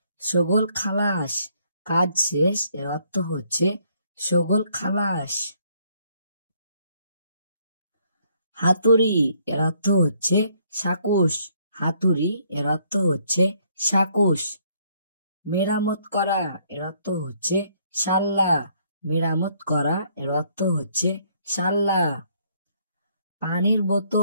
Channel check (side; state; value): both; inverted; correlation -0.67